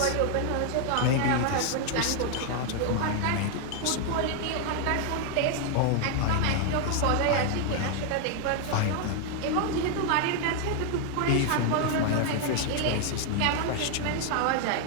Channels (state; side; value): different; both; correlation 0.00